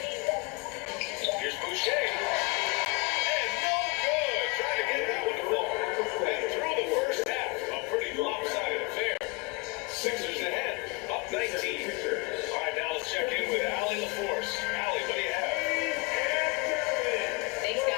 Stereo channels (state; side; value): quieter; right; 28.2 dB